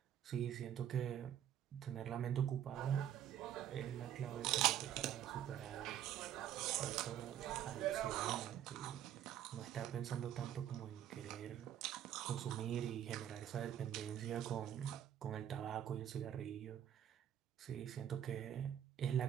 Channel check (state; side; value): quieter; left; 10.6 dB